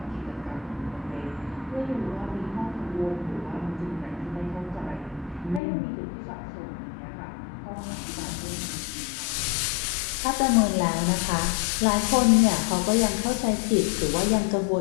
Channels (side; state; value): right; drops out; at 5.6 s